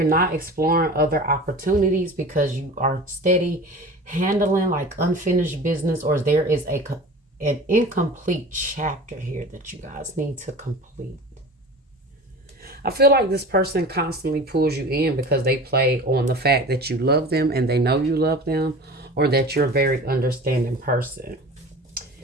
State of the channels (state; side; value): normal; both; correlation 0.37